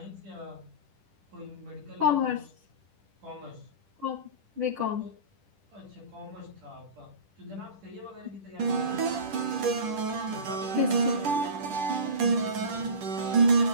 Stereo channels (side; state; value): left; late; 10 ms